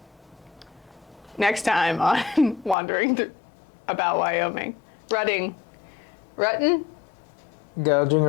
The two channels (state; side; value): drops out; right; at 2.8 s